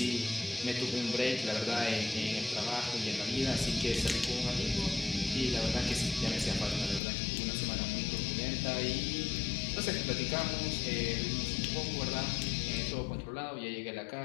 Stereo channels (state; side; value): drops out; right; at 7.0 s